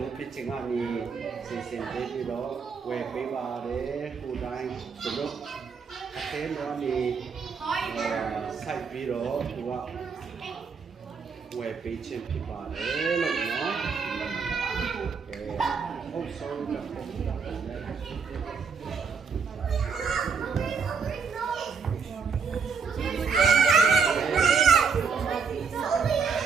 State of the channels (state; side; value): quieter; left; 5.6 dB